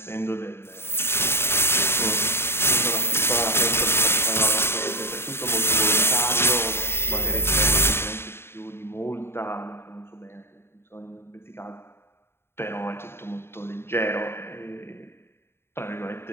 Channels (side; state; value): right; late; 0.12 ms